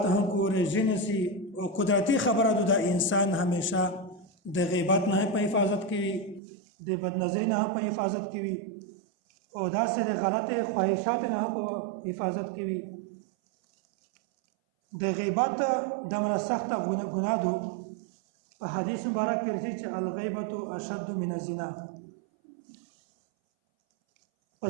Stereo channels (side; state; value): left; drops out; at 6.4 s